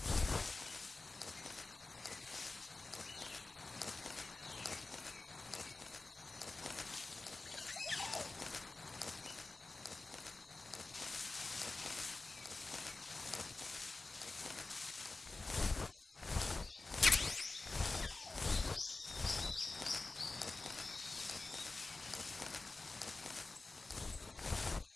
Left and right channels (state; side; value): quieter; right; 3.4 dB